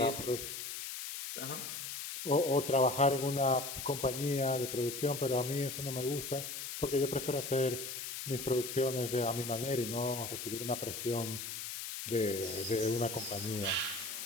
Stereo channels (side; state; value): left; noise; hiss, 6 dB below the sound